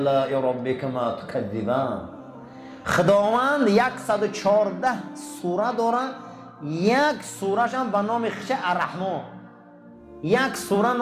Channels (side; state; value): both; identical; correlation 1.00